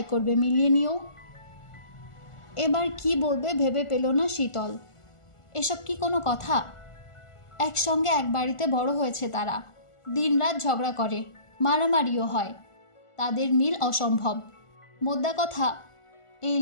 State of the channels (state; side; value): late; right; 1.4 ms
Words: করবে, মিলিয়ে নিও। এবার কি বলবে ভেবে পেল না শীতল। এসব কি কোনো কথা? একসঙ্গে এক বাড়িতে বড় হয়েছে তারা। দিনরাত ঝগড়া করে, মারামারিও হয়। তাদের মিল অসম্ভব। মোদ্দা কথা, এই